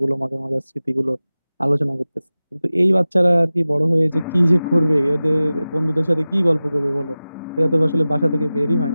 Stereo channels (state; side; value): inverted; both; correlation -0.96